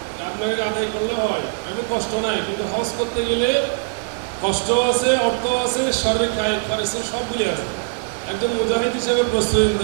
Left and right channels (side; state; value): left; silent; digital silence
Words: আপনাকে আদায় করলে হয়, এমন কষ্ট নাই, কিন্তু হজ করতে গেলে কষ্ট আছে, অর্থ আছে, শারীরিক কায়িক খরচ সবগুলি আছে। একজন মুজাহিদ হিসেবে প্রস্তুতি